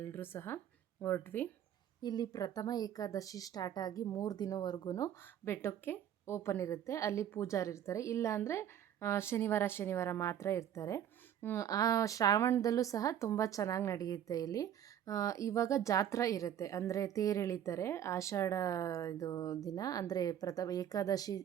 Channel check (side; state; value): left; quieter; 10.2 dB